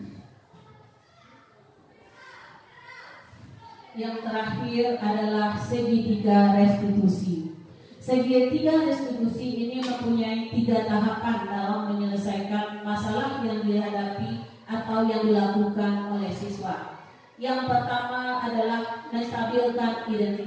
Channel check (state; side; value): identical; both; correlation 1.00